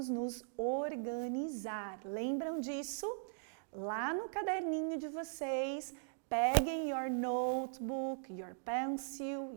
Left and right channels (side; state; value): left; silent; digital silence